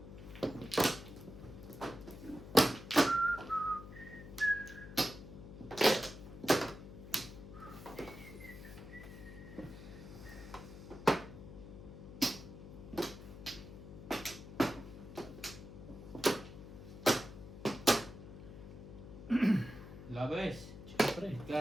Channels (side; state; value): left; noise; hum, 13 dB below the sound